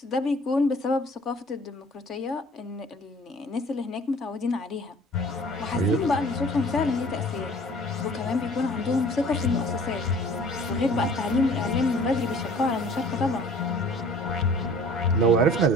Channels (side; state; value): both; normal; correlation 0.49